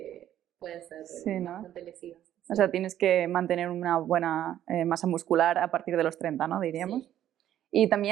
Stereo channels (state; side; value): quieter; left; 11.6 dB